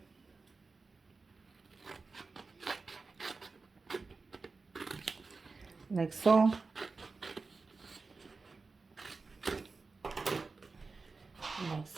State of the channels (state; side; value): quieter; left; 4.1 dB